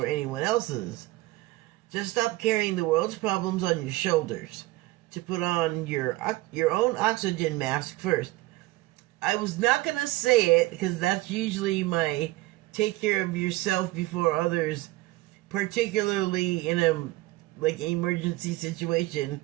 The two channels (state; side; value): quieter; left; 19.0 dB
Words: anyone else's. Just stop carrying the world's problems on your shoulders. To put on your own oxygen mask first. I was not going to say it because that's usually my take care of yourself before others, particularly in a emergency situation.